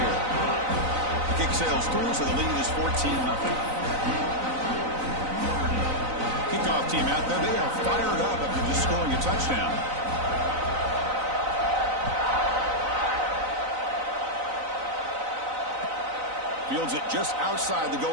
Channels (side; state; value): left; late; 3.9 ms